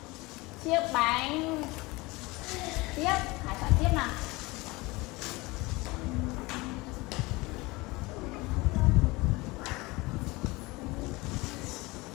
chiếc bánh. Tiếp, Khải chọn tiếp nào.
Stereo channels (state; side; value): quieter; right; 22.8 dB